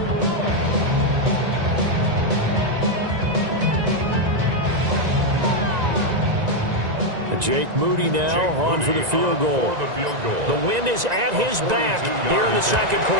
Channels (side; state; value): left; late; 1.9 ms